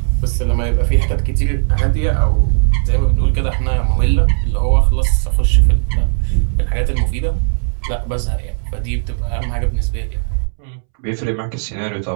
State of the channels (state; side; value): silent; left; 69 dB below the other